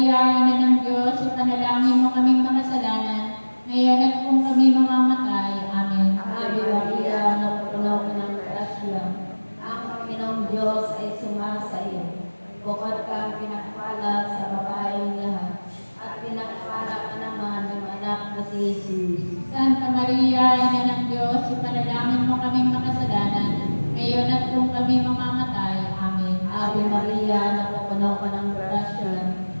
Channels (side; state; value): both; inverted; correlation -1.00